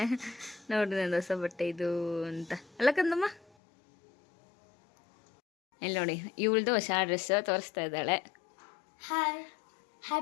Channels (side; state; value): right; drops out; at 3.4 s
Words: ನೋಡ್ರಿ ನಂದು ಹೊಸ ಬಟ್ಟೆ ಇದು ಅಂತ ಅಲ್ಲ ಕಂದಮ್ಮ. ಇಲ್ಲಿ ನೋಡಿ, ಇವಳ್ದು ಹೊಸ ಡ್ರೆಸ್ ತೋರಿಸ್ತಾ ಇದ್ದಾಳೆ. Hi,